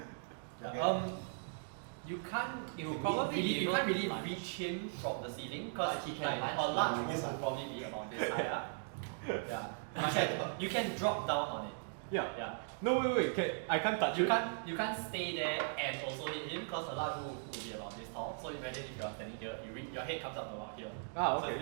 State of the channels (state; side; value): silent; left; digital silence